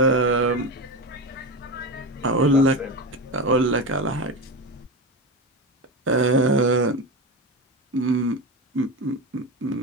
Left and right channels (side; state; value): both; normal; correlation 0.20